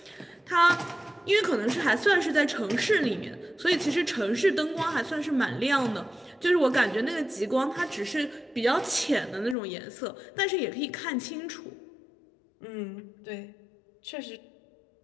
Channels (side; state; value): right; drops out; at 9.6 s